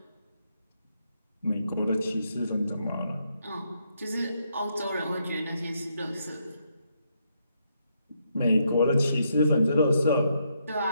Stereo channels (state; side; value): inverted; both; correlation -0.77